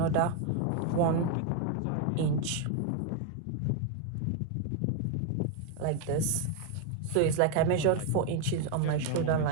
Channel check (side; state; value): both; different; correlation 0.01